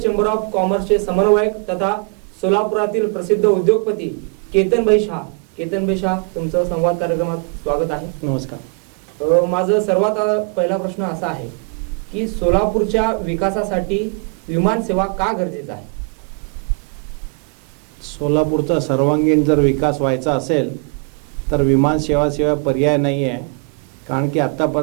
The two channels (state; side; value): quieter; left; 37.9 dB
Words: ऑफ कॉमर्सचे समन्वयक तथा सोलापुरातील प्रसिद्ध उद्योगपती केतनभाई शाह। केतनभाई शाह, तुमचं संवाद कार्यक्रमात स्वागत आहे। नमस्कार। माझा सर्वात पहिला प्रश्न असा आहे की सोलापूरच्या विकासासाठी विमान सेवा का गरजेचं आहे? सोलापूरचा सर्वांगीण जर विकास व्हायचा असेल तर विमान सेवा पर्याय नाही आहे। कारण की